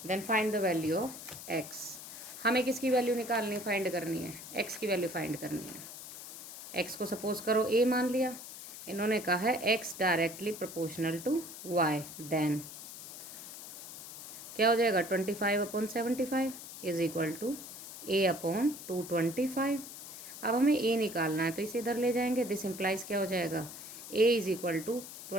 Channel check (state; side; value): noise; left; hiss, 12 dB below the sound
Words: then find the value of x। हमें किसकी वैल्यू निकालनी, फाइंड करनी है, x की वैल्यू फाइंड करनी है। x को सपोज करो a मान लिया, इन्होंने कहा है x directly proportional to y, then क्या हो जाएगा, 25/75 इज इक्वल टू a/225। अब हमें a निकालना है तो इसे इधर ले जाएंगे, दिस इम्प्लाइज क्या हो जाएगा, a is equal to